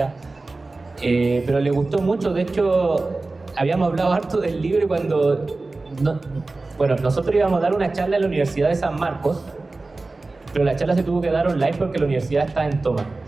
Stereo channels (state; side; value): quieter; left; 3.4 dB